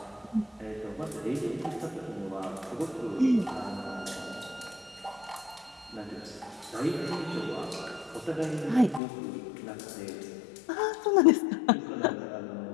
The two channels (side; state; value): right; drops out; at 9.0 s